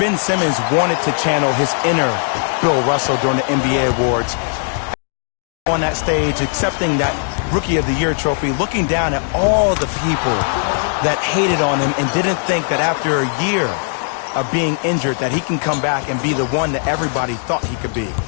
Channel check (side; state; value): right; silent; digital silence